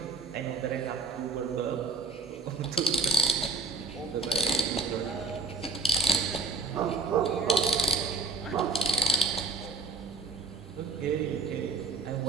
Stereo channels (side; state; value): left; quieter; 3.8 dB